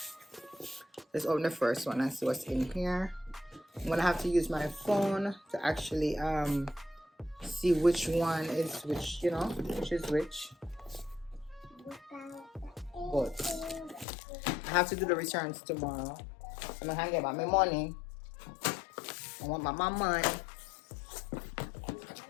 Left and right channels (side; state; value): right; drops out; at 14.1 s